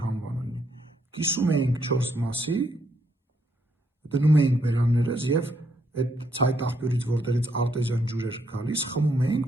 համվան լինի, կիսում էինք 4 մասի, դնում էինք բերաններս եւ այդ ցայտ աղբյուրից, որտեղից արտեզյան ջուր էր գալիս, խմում էինք,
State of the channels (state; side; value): normal; both; correlation 0.74